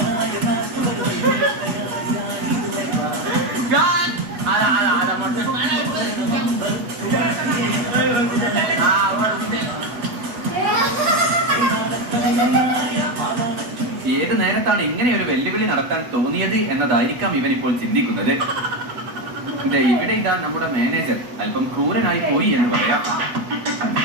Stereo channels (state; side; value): late; left; 8.1 ms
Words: ഏത് നേരത്താണ് ഇങ്ങനെ ഒരു വെല്ലുവിളി നടത്താൻ തോന്നിയത് എന്നതായിരിക്കാം ഇവൻ ഇപ്പോൾ ചിന്തിക്കുന്നത്. ഇവിടെ ഇതാ നമ്മുടെ മാനേജർ അല്പം ക്രൂരനായി പോയി എന്ന് പറയാം.